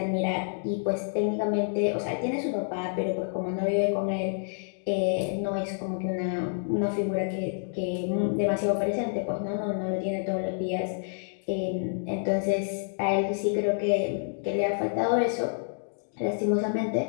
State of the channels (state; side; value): silent; right; digital silence